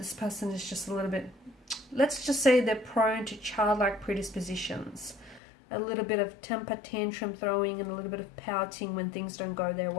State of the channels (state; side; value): drops out; right; at 5.4 s